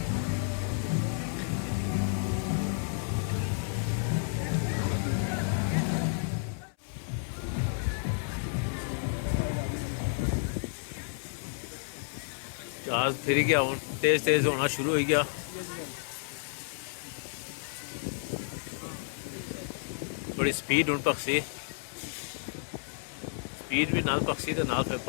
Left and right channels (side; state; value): right; silent; 57 dB below the other